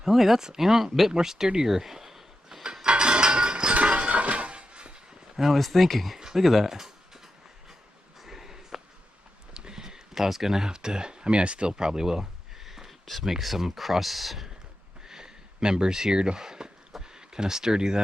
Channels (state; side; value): normal; both; correlation 0.89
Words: Oh, wait, that's, you know, a bit more sturdier than I was thinking. Look at that. I was gonna have to, I mean, I still probably will just make some cross members here to kind of sturdy